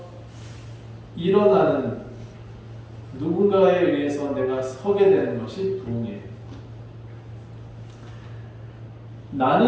일어나는 누군가에 의해서 내가 서게 되는 것이 부흥이에요.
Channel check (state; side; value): identical; both; correlation 1.00